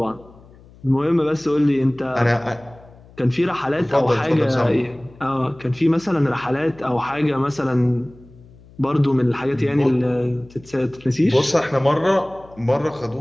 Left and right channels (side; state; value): left; noise; hum, 24 dB below the sound